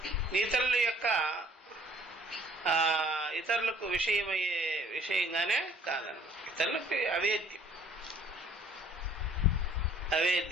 ఇతరుల యొక్క ఇతరులకు విషయమయ్యే విషయంగానే కాదన్నమాట. ఇతరులకు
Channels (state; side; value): normal; both; correlation 0.57